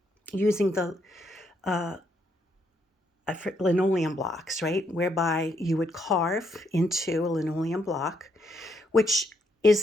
using the linoleum blocks, right? Whereby you would carve into a linoleum block, which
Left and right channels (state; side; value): normal; both; correlation 0.75